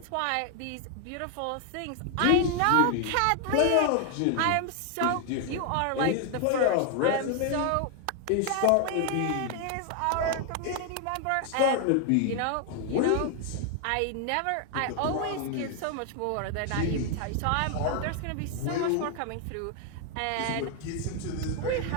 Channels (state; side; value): different; both; correlation 0.00